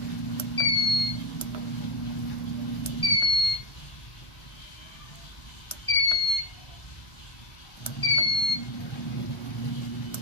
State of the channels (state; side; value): late; right; 1.5 ms